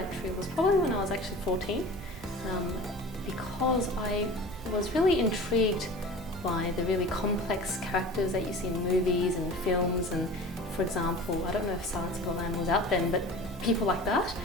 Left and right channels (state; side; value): normal; both; correlation 0.38